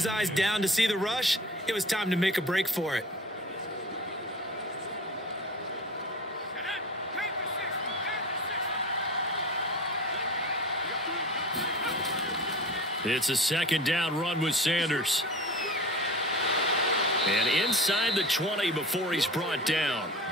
eyes down to see the rush, it was time to make a break for it. It's a 2nd down run with Sanders. And inside the 20 before he's brought down.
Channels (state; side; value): normal; both; correlation 0.37